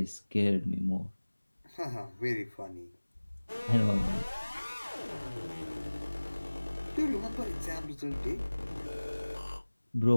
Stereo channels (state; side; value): inverted; both; correlation -1.00